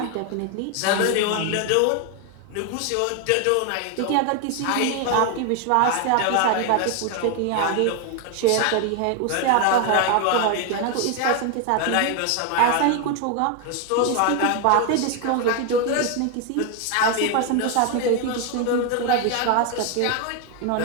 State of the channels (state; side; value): different; both; correlation 0.01